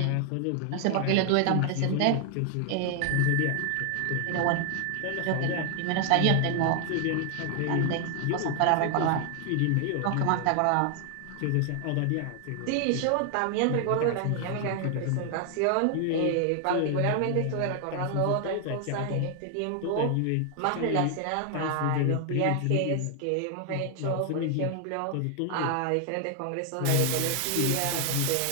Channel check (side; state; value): both; different; correlation 0.00